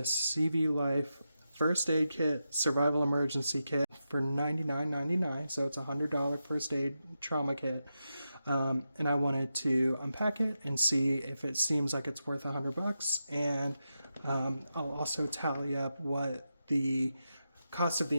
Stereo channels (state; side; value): inverted; both; correlation -0.88